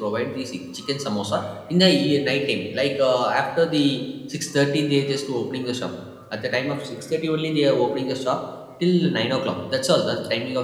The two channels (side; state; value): both; identical; correlation 1.00